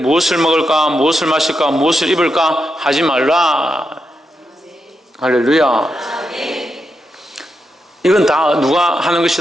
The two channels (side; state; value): both; normal; correlation 0.85